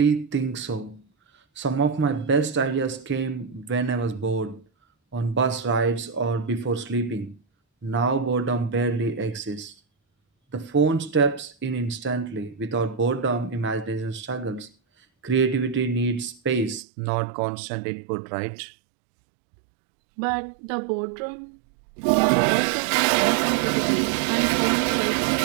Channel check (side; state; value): left; drops out; at 16.8 s